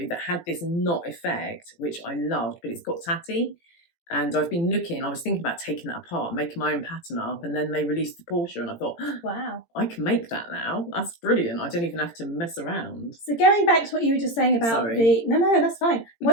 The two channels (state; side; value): late; right; 18 ms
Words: that had this knot effect, which I loved, but it's got tatty. And I've been looking, I was thinking about taking that apart, making my own pattern up, and then they released the Portia, and I thought, wow, I can make that now. That's brilliant. I don't even have to mess around. So going back to what you were just saying about no, that's fine.